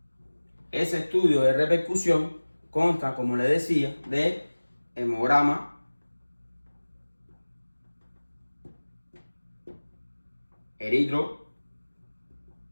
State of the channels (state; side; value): inverted; both; correlation -1.00